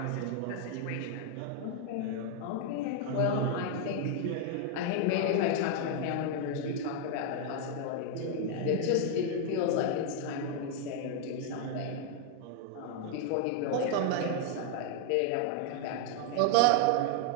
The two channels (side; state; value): both; different; correlation 0.00